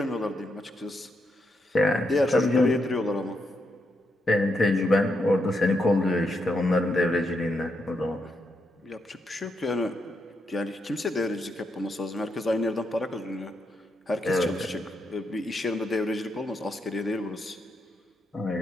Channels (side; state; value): both; normal; correlation 0.81